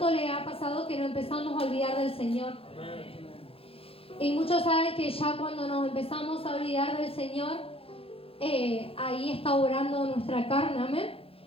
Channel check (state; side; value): late; right; 0.27 ms